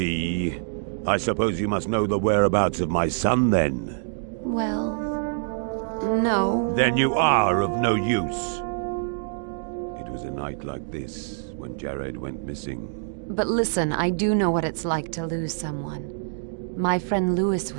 I suppose you must know the whereabouts of my son, then? Well, no. Then you are of no use. It was a night like this when Jared went missing. But listen, I do know what it's like to lose someone. My friend Lewis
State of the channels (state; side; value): silent; left; digital silence